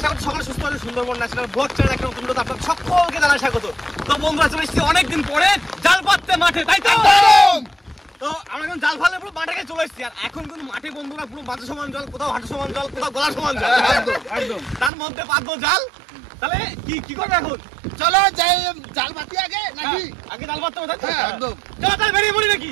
করছি সকলে সুস্থ আছে। সুন্দরবন ন্যাশনাল ব্লগ চ্যানেল একটা নতুন ভিডিওতে আপনাদের সকলকে জানাই স্বাগত। তো বন্ধুরা চলে এসেছি অনেকদিন পরে জাল পাততে মাঠে, তাই তো? তো আমরা এখন জাল ফালে পুরো মাঠে চলে এসেছি, আর এখন কিন্তু মাঠে বন্ধুরা পুরো মাথা সমান জল, কোথাও হাঁটু সমান জল, কোথাও গলা সমান জল, একদম তার মধ্যে পাতবো জাল। তাহলে কি করবে এখন? চলো যাই জাল পাতি আগে নাকি? আগে জাল পাততে হবে, একদম। চলো তাহলে বেরিয়ে পড়ি নাকি?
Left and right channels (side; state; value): left; drops out; at 14.9 s